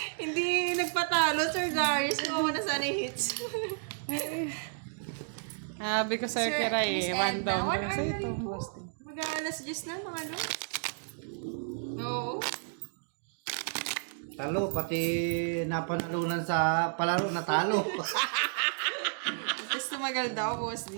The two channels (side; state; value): left; silent; digital silence